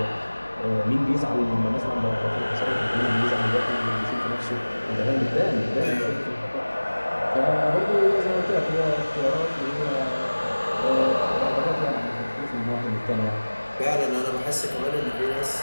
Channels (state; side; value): inverted; both; correlation -1.00